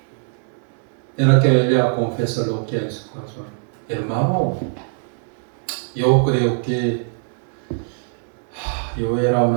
En la que ella confiesa lo que hay en su corazón. Hermano, yo creo que yo era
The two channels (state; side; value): silent; left; 59 dB below the other